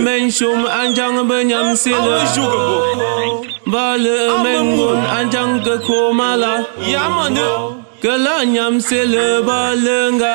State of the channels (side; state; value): left; silent; digital silence